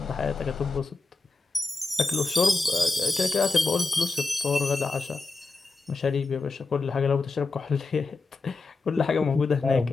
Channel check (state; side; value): quieter; right; 3.7 dB